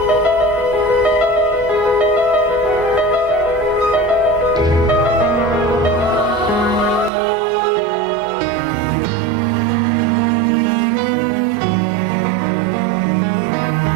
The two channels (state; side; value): drops out; left; at 7.1 s